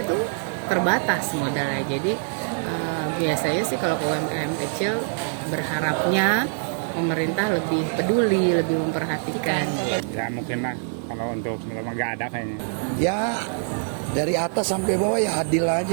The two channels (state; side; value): silent; left; digital silence